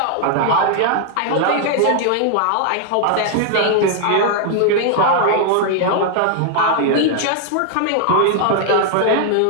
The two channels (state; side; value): different; both; correlation 0.00